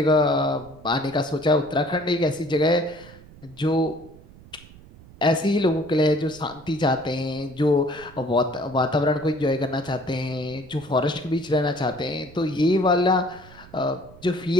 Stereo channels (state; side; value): noise; right; rumble, 21 dB below the sound